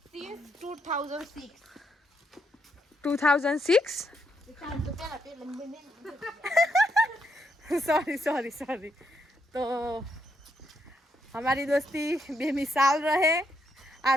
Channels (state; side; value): normal; both; correlation 0.78